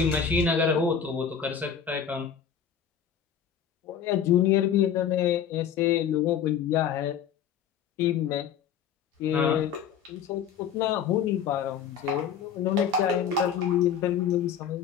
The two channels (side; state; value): right; quieter; 8.0 dB